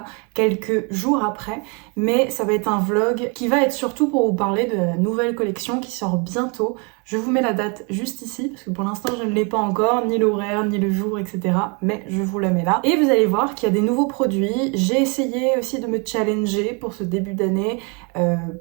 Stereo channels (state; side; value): quieter; left; 33.1 dB